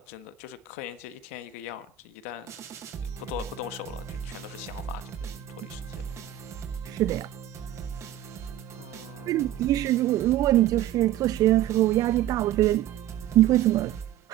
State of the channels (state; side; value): quieter; left; 12.1 dB